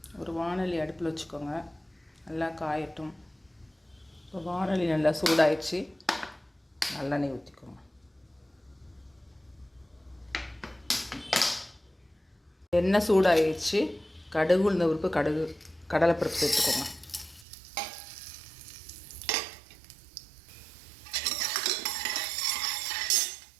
ஒரு வாணலி அடுப்பில் வச்சுக்கோங்க, நல்லா காயட்டும். இப்போ வாணலி நல்லா சூடாயிடுச்சு, நல்லெண்ணெய் ஊற்றிக்கோங்க. எண்ணெய் சூடாயிடுச்சு, கடுகு உளுந்த பருப்பு, கடலைப்பருப்பு சேர்த்துக்கோங்க.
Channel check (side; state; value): left; drops out; at 17.4 s